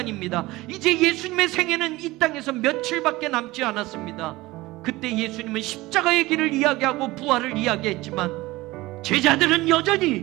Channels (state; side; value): quieter; left; 19.6 dB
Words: 이제 예수님의 생애는 이 땅에서 며칠밖에 남지 않았습니다. 그때 예수님은 십자가의 길을 이야기하고 부활을 이야기했지만 제자들은